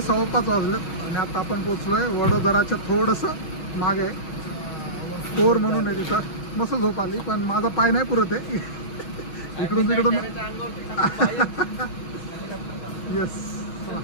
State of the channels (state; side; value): late; right; 6.2 ms